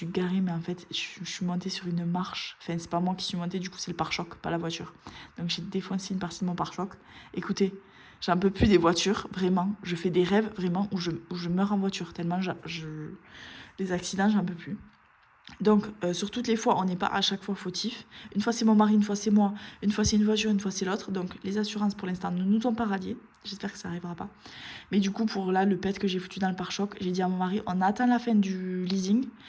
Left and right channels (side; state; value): both; identical; correlation 1.00